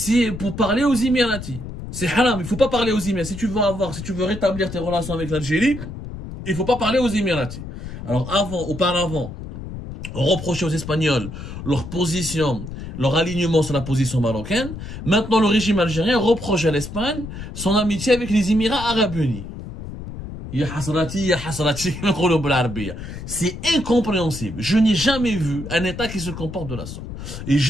pour parler aux Émiratis. C'est haram, il faut pas parler aux Émiratis. Si tu veux rétablir tes relations avec l'Algérie, il faut pas parler aux Émiratis. Alors auparavant, on reprochait aux Espagnols leur position, leur alignement sur la position marocaine. Maintenant, le régime algérien reproche à l'Espagne son amitié avec les Émirats Arabes Unis. C'est incompréhensible. Je n'ai jamais vu un État qui se comporte de la sorte. Et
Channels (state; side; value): noise; left; rumble, 10 dB below the sound